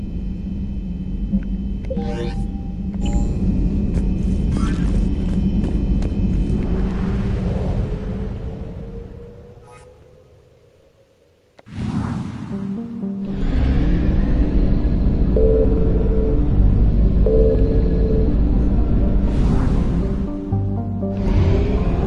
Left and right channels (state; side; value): identical; both; correlation 1.00